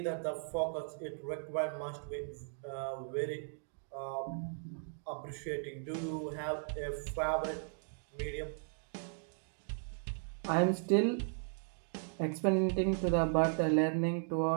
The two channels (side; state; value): left; silent; digital silence